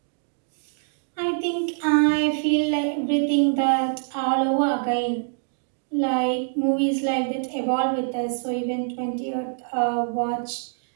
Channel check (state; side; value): silent; left; digital silence